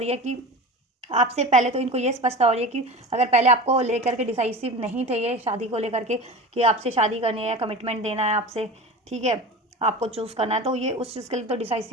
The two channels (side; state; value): both; normal; correlation 0.32